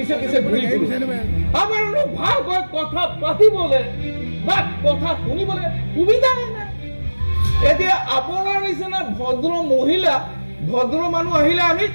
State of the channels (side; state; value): both; inverted; correlation -1.00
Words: পিছে ঘুরি ফুরি আমার ভাল কথা পাতিবলে বা কথা শুনিবলে সুবিধা নাই এতিয়া আপোনাৰ নিচিনা ভদ্ৰ মহিলা ভদ্ৰ মানুষ আহিলে আমি